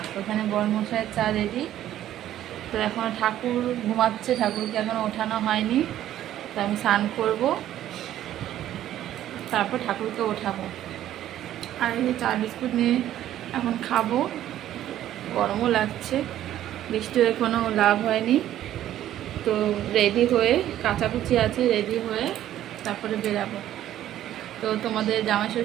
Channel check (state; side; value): quieter; left; 12.3 dB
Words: ওখানে বড় মশাইয়ের চা রেডি। তো এখন ঠাকুর ঘুমাচ্ছে, ঠাকুরকে এখনও ওঠানো হয়নি। তো আমি স্নান করব, তারপর ঠাকুরকে ওঠাবো। আর এই চা বিস্কুট নিয়ে এখন খাবো। গরমও লাগছে, বৃষ্টি হয়ে কোনো লাভ হয়নি। তো রেডি হয়ে, কাচাকুচি আছে, রেডি হয়ে তারপরে বেরাবো। তো তোমাদের জামাই